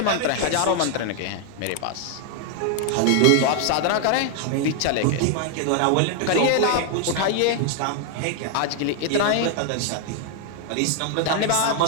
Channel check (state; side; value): different; both; correlation 0.00